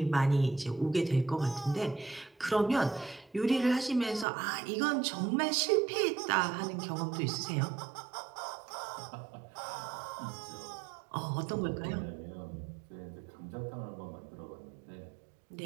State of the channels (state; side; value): drops out; left; at 4.2 s